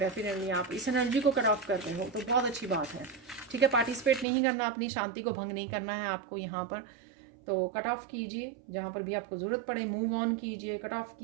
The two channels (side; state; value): left; drops out; at 4.2 s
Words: आप इस एनर्जी को कट ऑफ कर रहे हो, तो बहुत अच्छी बात है, ठीक है। पार्टिसिपेट नहीं करना, अपनी शांति को भंग नहीं करना है आपको यहाँ पर, तो कट ऑफ कीजिए, जहाँ पर भी आपको ज़रूरत पड़े मूव ऑन कीजिए, कट ऑफ